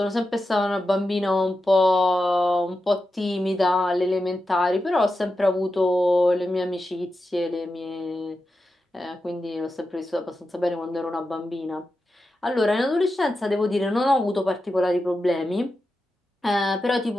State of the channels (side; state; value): both; normal; correlation 0.90